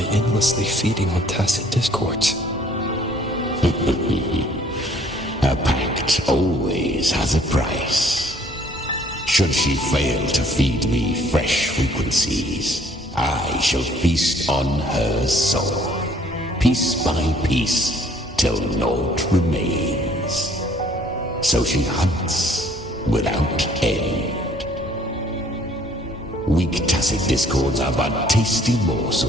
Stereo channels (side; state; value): both; normal; correlation 0.60